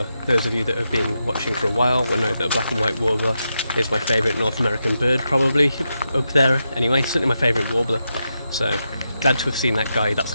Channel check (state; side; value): inverted; both; correlation -0.86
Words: Those of you that have been watching for a while will know that a black and white warbler is my favourite North American bird, probably up there anyway, certainly my favourite warbler. So glad to have seen that guy. That's